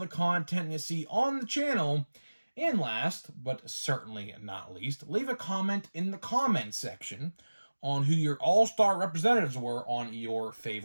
content you see on the channel, and last, but certainly not least, leave a comment in the comment section on who your all-star representatives were on your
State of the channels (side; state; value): both; inverted; correlation -1.00